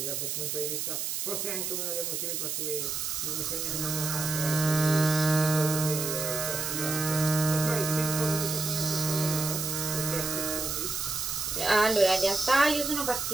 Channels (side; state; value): right; noise; hiss, 2 dB below the sound